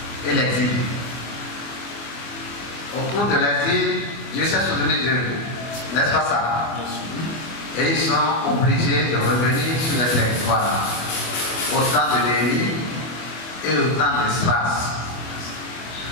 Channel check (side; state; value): right; late; 24 ms